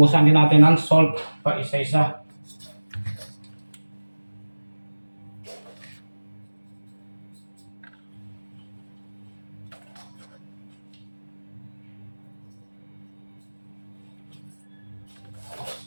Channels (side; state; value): both; inverted; correlation -1.00